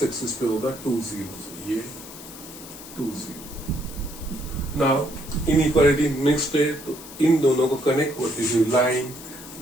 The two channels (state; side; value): noise; left; hiss, 15 dB below the sound